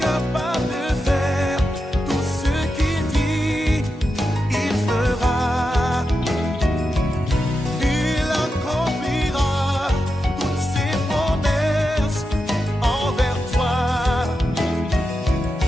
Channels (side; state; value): both; normal; correlation 0.89